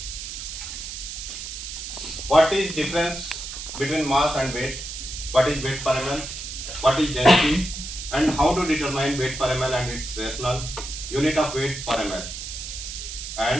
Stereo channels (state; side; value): noise; right; hiss, 8 dB below the sound